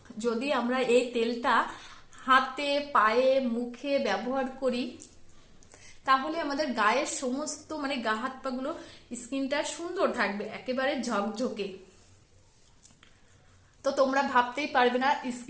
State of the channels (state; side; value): identical; both; correlation 1.00